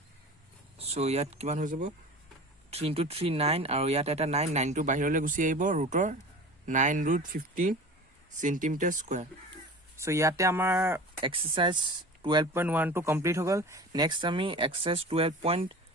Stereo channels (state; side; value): normal; both; correlation 0.36